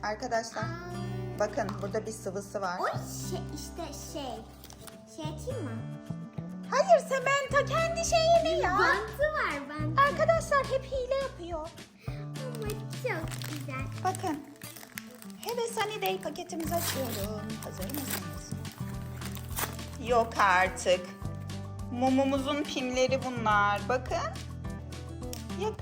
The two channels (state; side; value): identical; both; correlation 1.00